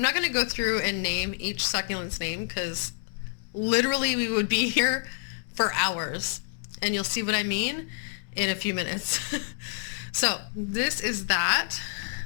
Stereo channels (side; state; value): right; silent; digital silence